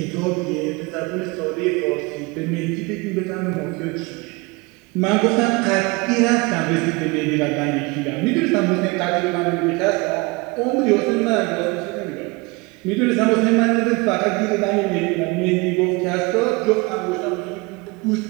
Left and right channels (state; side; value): quieter; left; 25.7 dB